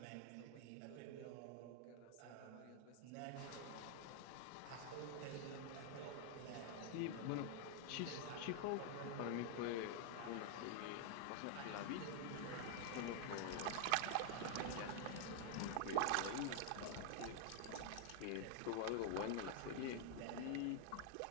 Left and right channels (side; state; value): both; different; correlation 0.00